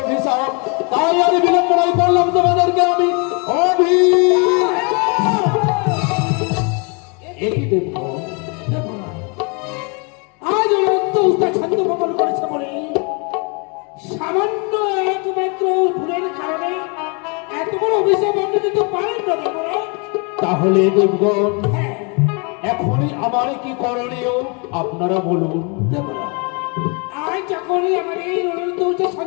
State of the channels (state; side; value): quieter; right; 33.7 dB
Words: তাই আমি বিলম্বনাই করলাম তোমাদেরকে আমি একই দেখবো আজ অনন্ত উস্তাদ ছন্দ ভঙ্গন করেছে বলে সামান্য একমাত্র ভুলের কারণে এত বড় অভিশাপ আপনি দিতে পারেন না দেবরা। তাহলে দেবগণ হ্যাঁ এখনই আমার কি করণীয় আপনারা বলুন। দেবরা, আজ যখনই আমাদের অনন্ত উস্তাদ